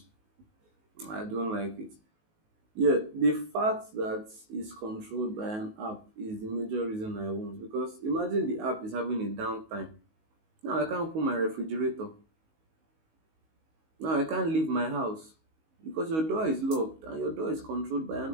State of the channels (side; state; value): left; late; 19 ms